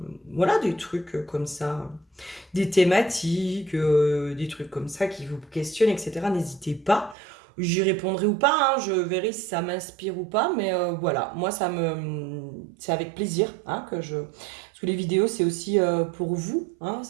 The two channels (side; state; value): left; drops out; at 7.2 s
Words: Voilà, des trucs comme ça, des thématiques, des trucs comme ça qui vous questionnent, etc. N'hésitez pas. J'y répondrai ou pas, hein, je verrai si ça m'inspire ou pas, mais voilà, moi c'est avec plaisir hein, que je... Parce que les vidéos, c'est aussi pour vous, hein,